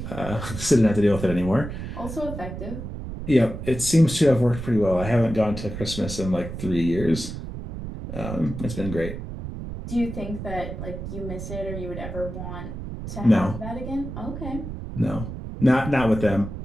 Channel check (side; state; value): right; noise; rumble, 8 dB below the sound